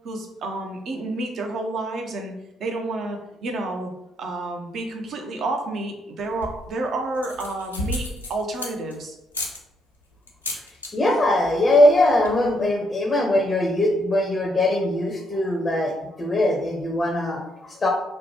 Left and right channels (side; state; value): both; normal; correlation 0.75